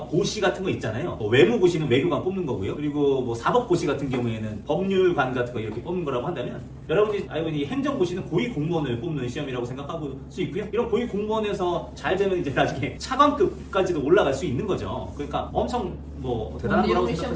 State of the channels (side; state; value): both; identical; correlation 1.00